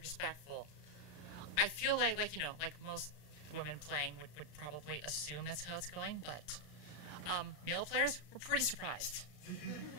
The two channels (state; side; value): late; right; 34 ms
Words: I feel like you know, like most women playing would probably assume that's how it's going, but male players were pretty surprised.